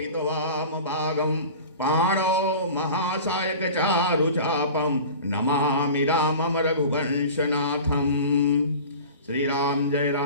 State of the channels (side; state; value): both; inverted; correlation -0.37